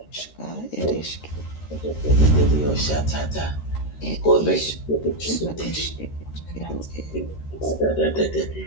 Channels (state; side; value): late; right; 13 ms